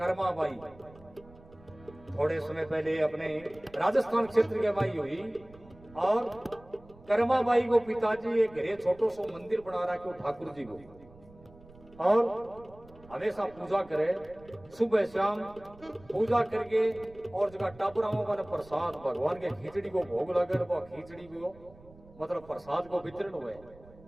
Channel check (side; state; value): right; noise; rumble, 23 dB below the sound